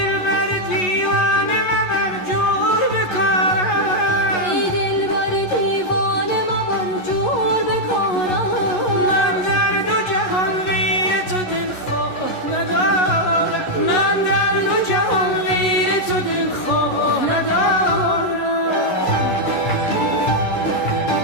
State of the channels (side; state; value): right; late; 11 ms